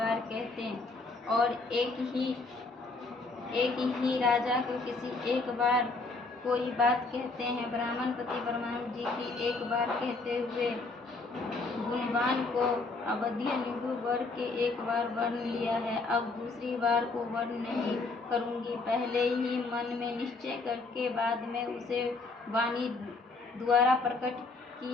कहते हैं, और एक ही राजा को किसी एक बार कोई बात कहते हैं। ब्राह्मणपति ब्रह्मण जी की एक बार कहते हुए गुणवान को अवधीय निगु वर के एक बार वर्ण लिया है, अब दूसरी बार को वर्ण नहीं करूंगी। पहले ही मन में निश्चय करके बाद में उसे वाणी द्वारा प्रकट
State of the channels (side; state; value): right; quieter; 3.7 dB